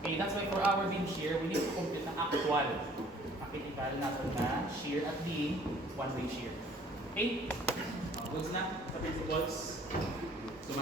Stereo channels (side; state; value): both; normal; correlation 0.56